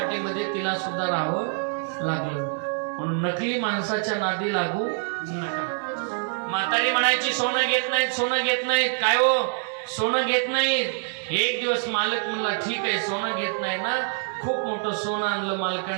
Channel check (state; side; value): silent; left; 59 dB below the other